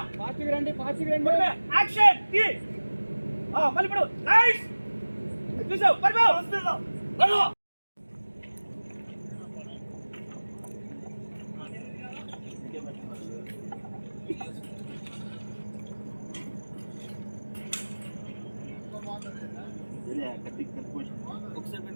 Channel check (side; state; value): both; inverted; correlation -1.00